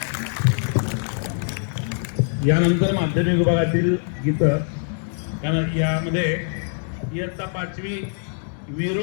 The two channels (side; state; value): right; silent; digital silence